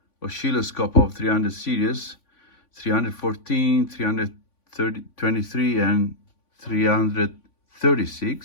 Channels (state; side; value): late; right; 3.5 ms